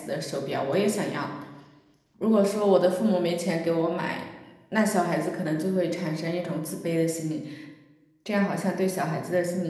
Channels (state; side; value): identical; both; correlation 1.00